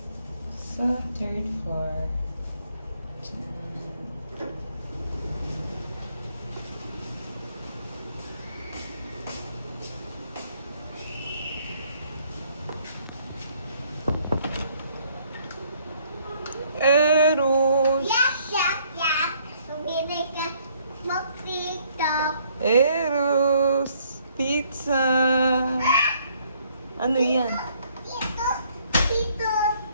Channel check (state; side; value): inverted; both; correlation -0.65